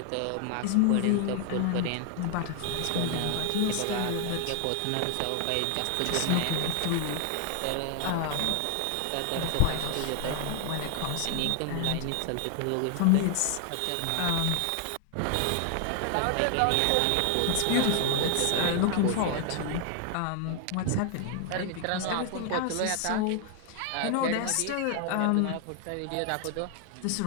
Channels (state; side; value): different; both; correlation 0.00